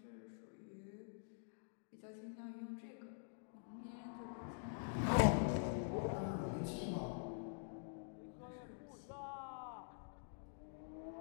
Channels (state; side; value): silent; right; digital silence